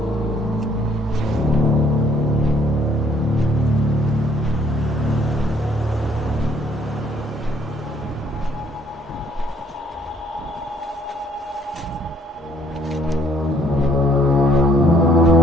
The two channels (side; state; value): both; normal; correlation 0.64